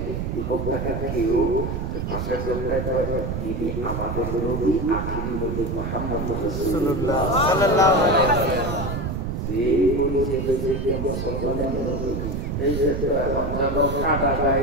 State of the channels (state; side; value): noise; right; rumble, 3 dB below the sound